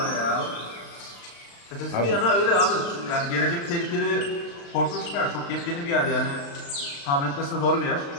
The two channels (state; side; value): late; right; 35 ms